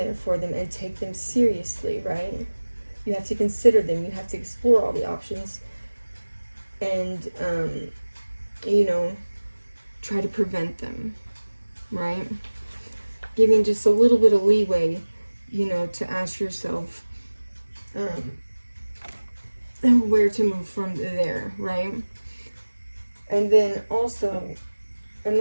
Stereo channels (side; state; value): both; inverted; correlation -1.00